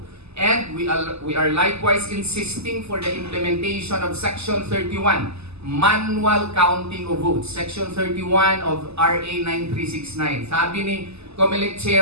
And we are likewise insisting for the implementation of Section 31, manual counting of votes. Section 31 of RA 9369. Sabi ni COMELEC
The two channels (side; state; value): left; late; 0.79 ms